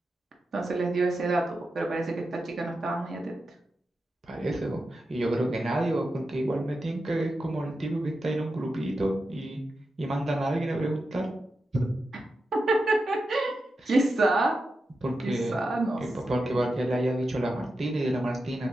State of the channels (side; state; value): both; normal; correlation 0.89